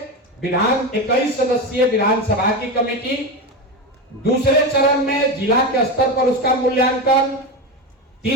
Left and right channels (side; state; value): both; normal; correlation 0.18